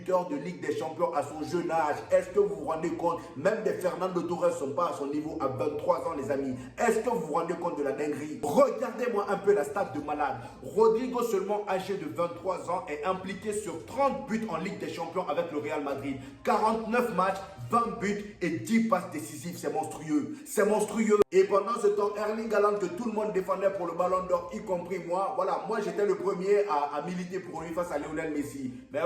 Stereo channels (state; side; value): identical; both; correlation 1.00